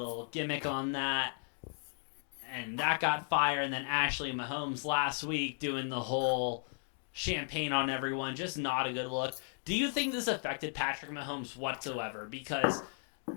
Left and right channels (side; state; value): right; silent; 54 dB below the other